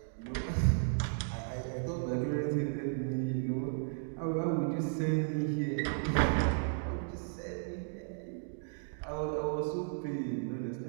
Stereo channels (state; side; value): silent; left; digital silence